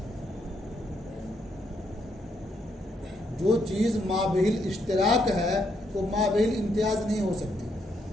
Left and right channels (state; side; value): normal; both; correlation 0.76